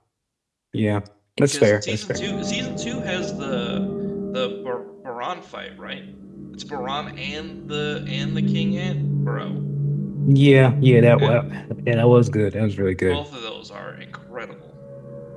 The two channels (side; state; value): both; identical; correlation 1.00